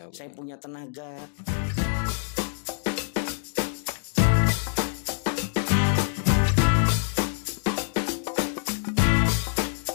saya punya tenaga.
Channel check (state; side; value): silent; right; digital silence